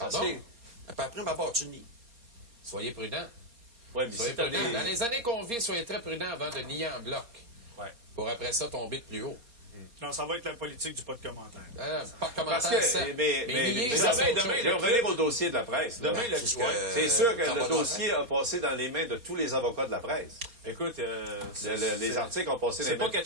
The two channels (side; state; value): left; late; 4.2 ms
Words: Pardon? que... Après ma barre, tu nies. Soyez prudents. Ouais, mais Soyez c'est pas prudents. des... Dans les années qu'on vit, soyez très prudents avant de nier en bloc. Ouais. Pour après ça tomber de plus haut. Non, ça va être la politique du pas de commentaire. Pas de Parce commentaire, que, certes. mais nier, demain, ça, c'est autre demain, chose. je vais revenir au dossier de la presse. là. Demain, le- C'est ce ouais. que- C'est sûr que ça va le dossier a passé dans les mains de tous les avocats de la presse. Écoute, Les articles ont passé dans c'est les pas mains.